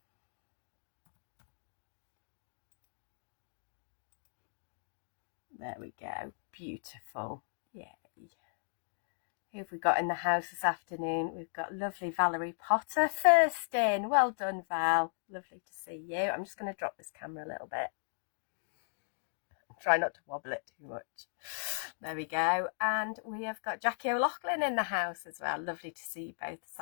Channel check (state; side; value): silent; right; digital silence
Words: There we go, beautiful. Yay. Who have we got in the house this afternoon? We've got lovely Valerie Potter first in. Well done, Val. Lovely to see you. I'm just going to drop this camera a little bit. Try not to wobble it too much. There we go. And we have got Jackie O'Loughlin in the house as well. Lovely to see you both this